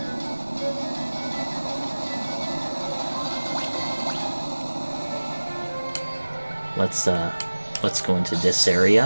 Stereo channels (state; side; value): inverted; both; correlation -1.00